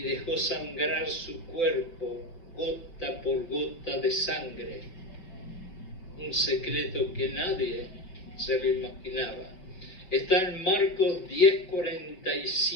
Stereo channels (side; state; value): right; late; 5.2 ms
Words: dejó sangrar su cuerpo gota por gota de sangre. Un secreto que nadie se lo imaginaba. Está en Marcos